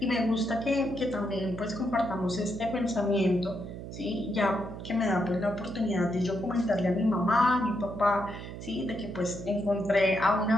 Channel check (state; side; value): noise; right; hum, 10 dB below the sound